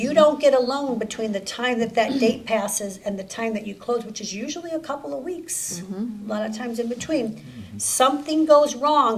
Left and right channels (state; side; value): identical; both; correlation 1.00